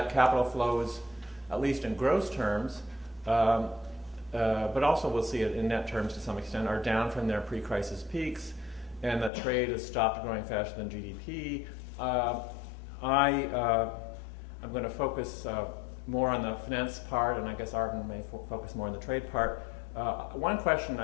capital flows, at least in gross terms, but also we'll see it in net terms to some extent, are down from their pre-crisis peaks, and that trade has stopped growing faster than GDP. I'm going to focus more on the finance part, and I guess Arvin may focus more on the trade part. One question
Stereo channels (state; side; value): drops out; right; at 9.3 s